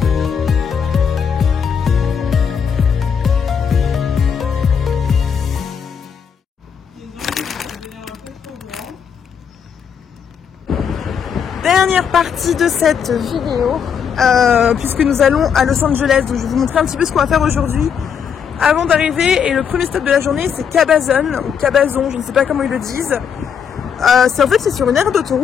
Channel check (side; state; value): right; quieter; 7.3 dB